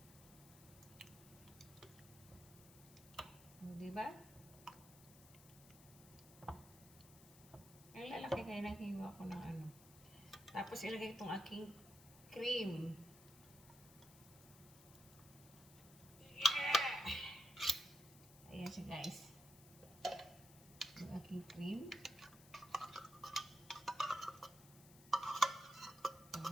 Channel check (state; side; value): noise; left; hiss, 20 dB below the sound